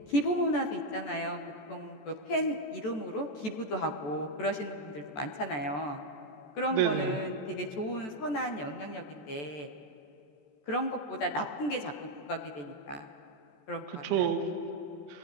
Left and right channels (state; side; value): late; right; 14 ms